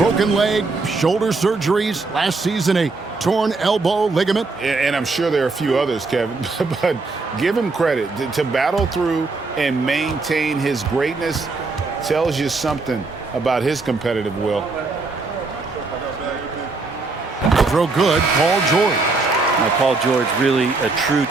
leg, shoulder surgeries, last season a torn elbow ligament. And I'm sure there are a few others, Kevin, but give him credit. To battle through and maintain his greatness tells you something about his competitive will. Throw good, Paul George. Now, Paul George, really a true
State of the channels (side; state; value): left; quieter; 3.8 dB